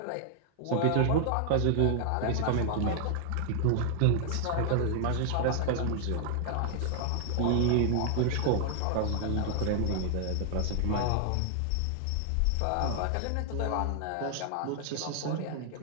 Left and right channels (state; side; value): different; both; correlation 0.00